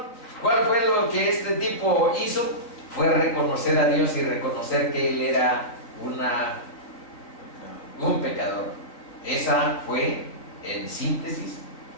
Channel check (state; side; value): late; right; 3.9 ms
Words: ¿Cuál fue lo que este tipo hizo? Fue reconocer a Dios y reconocer que él era un pecador. Esa fue, en síntesis,